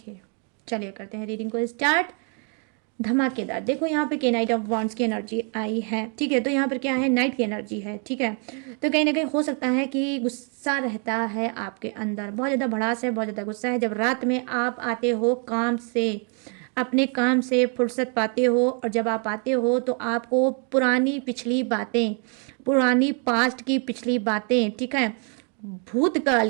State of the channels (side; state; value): left; quieter; 39.3 dB